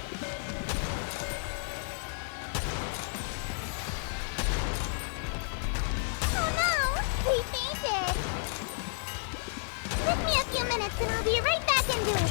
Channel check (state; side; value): silent; right; digital silence